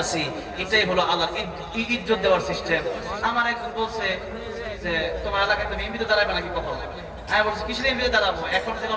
আছি। এটাই হলো আল্লাহর ইজ্জত দেওয়ার সিস্টেম। আমার একজন বলছে যে, তোমার এলাকায় তুমি এমপিতে দাঁড়াবে নাকি কখন? আমি বলছি, কিসের এমপিতে দাঁড়াবো? এখন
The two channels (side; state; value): both; identical; correlation 1.00